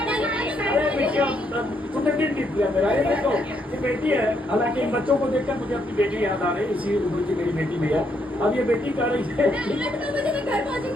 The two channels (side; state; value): both; normal; correlation 0.75